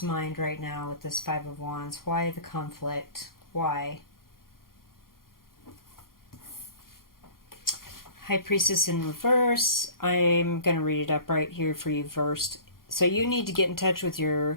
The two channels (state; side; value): late; right; 0.92 ms